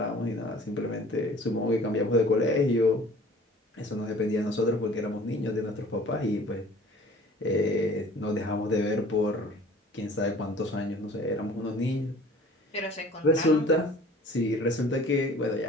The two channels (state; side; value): normal; both; correlation 0.49